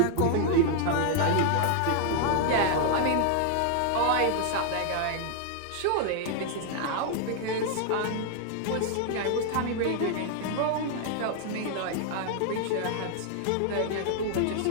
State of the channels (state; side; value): different; both; correlation 0.00